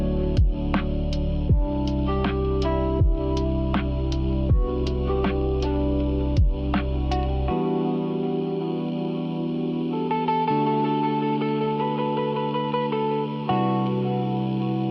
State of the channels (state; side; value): identical; both; correlation 1.00